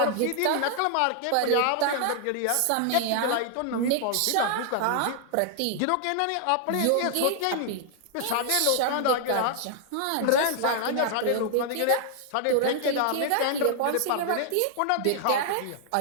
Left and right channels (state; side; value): different; both; correlation -0.01